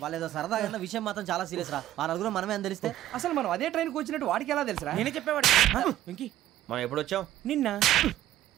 వాళ్ళేదో సరదాగా విషయం మాత్రం చాలా సీరియస్ రా. ఆ 4 మనమే అని తెలిస్తే అసలు మనం అదే ట్రైన్కి వచ్చినట్టు వాడికి ఎలా తెలుసురా? నేనే చెప్పేవాడు. వెంకీ, మనం ఎప్పుడు వచ్చాం? నిన్న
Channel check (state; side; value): quieter; left; 13.3 dB